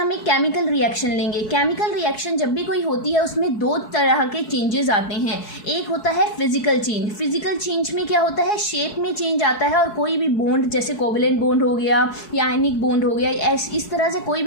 एक केमिकल रिएक्शन लेंगे. केमिकल रिएक्शन जब भी कोई होती है उसमें दो तरह के चेंजेस आते हैं. एक होता है फिजिकल चेंज. फिजिकल चेंज में क्या होता है, शेप में चेंज आता है और कोई भी बॉन्ड जैसे कोवेलेंट बॉन्ड हो गया या आयनिक बॉन्ड हो गया, इस तरह से कोई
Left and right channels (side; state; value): right; late; 4.7 ms